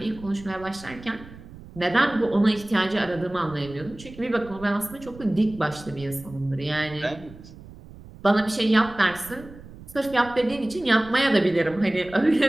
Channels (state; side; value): noise; right; rumble, 18 dB below the sound